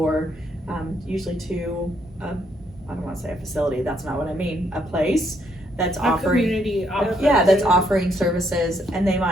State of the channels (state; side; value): normal; both; correlation 0.73